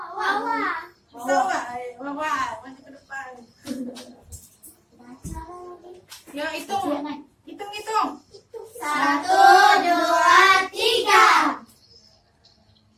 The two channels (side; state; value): both; identical; correlation 1.00